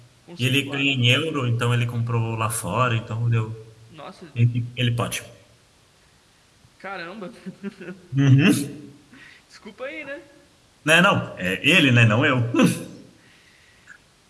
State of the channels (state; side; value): identical; both; correlation 1.00